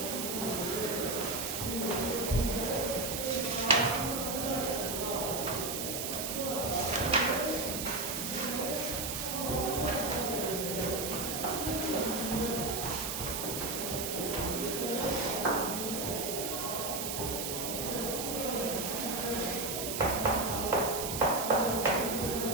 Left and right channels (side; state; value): right; noise; hiss, 3 dB below the sound